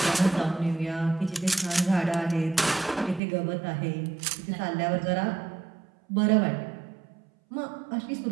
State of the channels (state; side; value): drops out; left; at 3.2 s